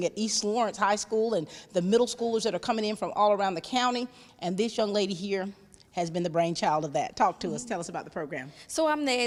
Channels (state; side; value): identical; both; correlation 1.00